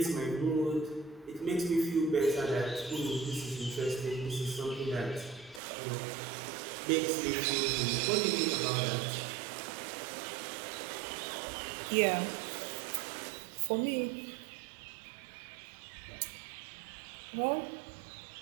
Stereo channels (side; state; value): left; drops out; at 5.6 s